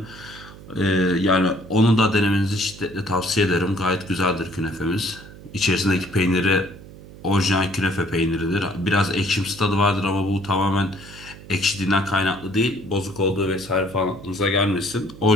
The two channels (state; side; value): noise; right; hum, 18 dB below the sound